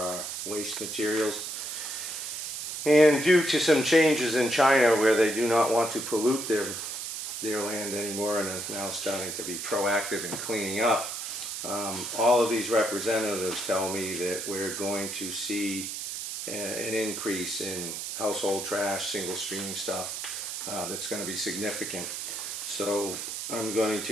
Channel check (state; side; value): noise; right; hiss, 5 dB below the sound